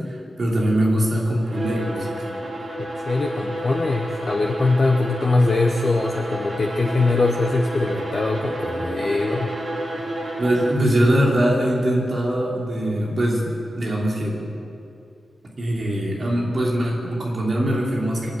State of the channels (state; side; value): normal; both; correlation 0.90